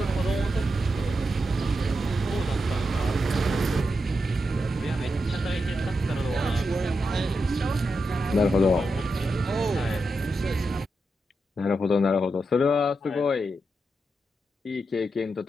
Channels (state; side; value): normal; both; correlation 0.86